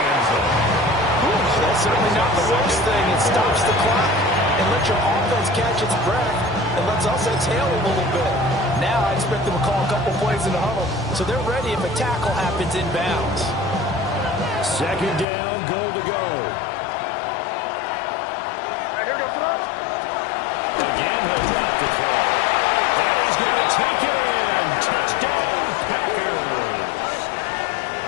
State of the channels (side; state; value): right; drops out; at 15.2 s